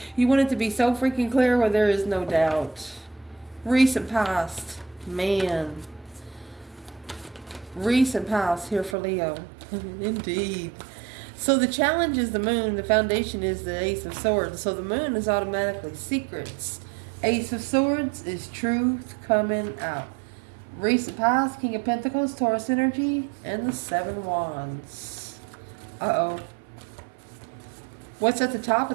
You want it to be so freaking clear where there is no doubt. Recent past. Man. Recent past here for Leo. Indeed. So the challenge is the moon. The foundation is the Ace of Swords. So the moon is automatically secrets. Ace of Swords is truth coming out. Recent past, King of Pentacles, Taurus energy, and the 7 Wands. Uh-oh. What's at the top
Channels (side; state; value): left; drops out; at 9.0 s